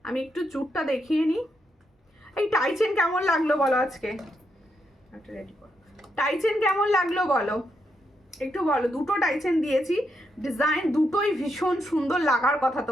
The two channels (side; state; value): both; normal; correlation 0.81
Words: আমি একটু চুটটা দেখিয়ে নিই। এই টাইচেন কেমন লাগলো বলো আজকে? একটা রেডি করো। টাইচেন কেমন লাগলো বলো, একটু বলো। দুটো টাইচেন দিয়েছি, ডিজাইন দুটোই ভীষণ সুন্দর লাগার কথা